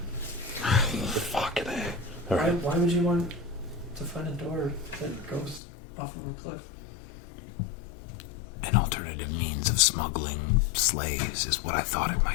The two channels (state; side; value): drops out; right; at 5.6 s